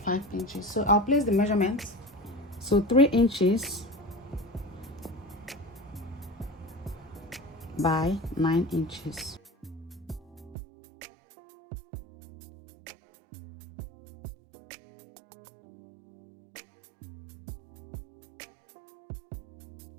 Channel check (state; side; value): drops out; left; at 10.6 s